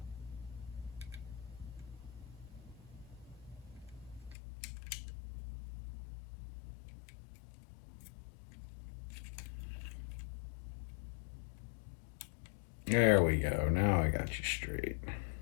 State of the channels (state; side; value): drops out; right; at 4.4 s